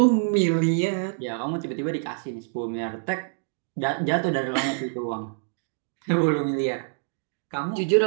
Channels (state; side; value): silent; left; digital silence